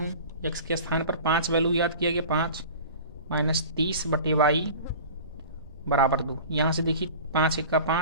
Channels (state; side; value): inverted; both; correlation -0.38